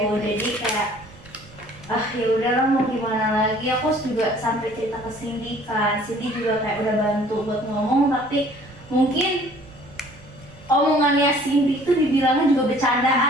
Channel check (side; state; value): right; noise; rumble, 26 dB below the sound